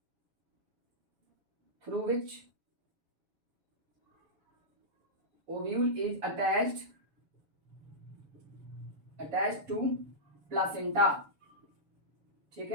ovule is attached to placenta. ठीक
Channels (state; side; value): late; left; 7.1 ms